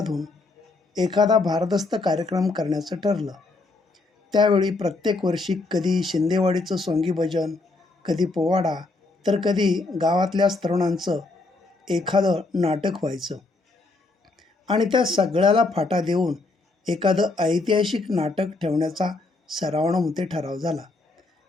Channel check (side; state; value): right; quieter; 3.3 dB